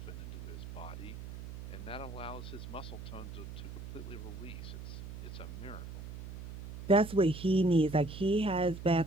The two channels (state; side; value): noise; right; hum, 10 dB below the sound